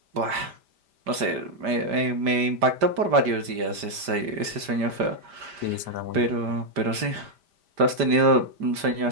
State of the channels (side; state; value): left; late; 5.0 ms